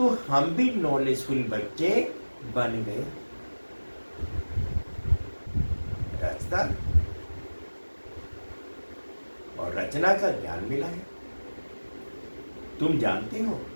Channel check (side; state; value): both; inverted; correlation -1.00